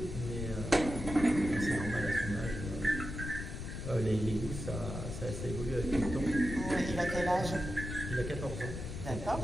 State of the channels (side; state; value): left; noise; rumble, 6 dB below the sound